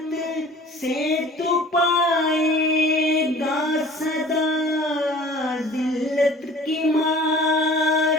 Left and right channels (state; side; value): normal; both; correlation 0.46